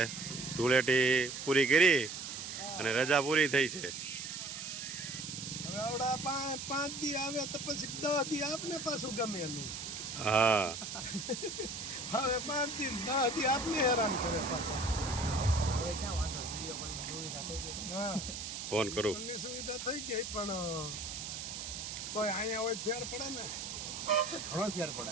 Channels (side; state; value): right; noise; hiss, 7 dB below the sound